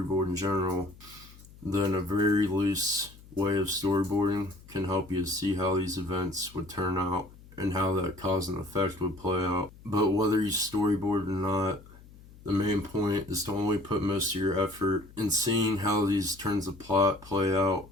in general, then a very loose way of storyboarding can help you to see how these events would turn out and how that cause and effect would play out. But whether you storyboard or not, the main point is to only put most of your effort in seeing how these turns of plot play out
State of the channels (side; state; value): left; noise; hum, 21 dB below the sound